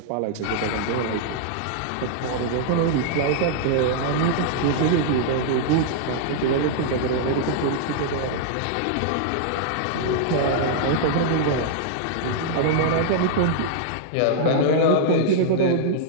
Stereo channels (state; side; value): different; both; correlation -0.01